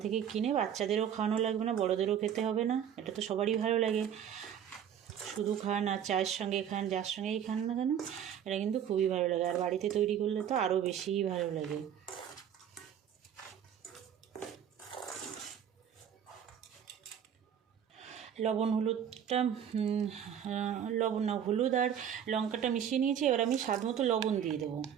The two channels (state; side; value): quieter; left; 9.0 dB